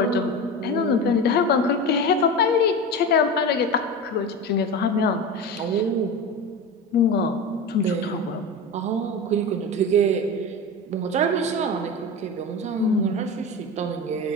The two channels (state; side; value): normal; both; correlation 0.25